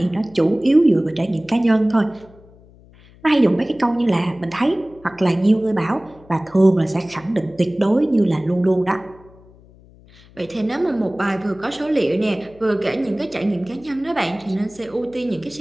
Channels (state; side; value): noise; left; hum, 25 dB below the sound